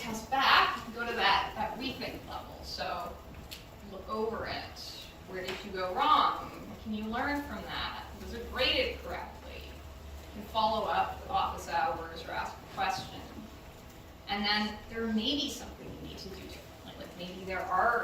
back, you can go to that rethink level. So look over it. Where did you go wrong? What can you learn from that? Was it graded correctly? You can follow up with office hours or ask a question. And then there may be something you need to do differently. Like maybe there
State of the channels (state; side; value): identical; both; correlation 1.00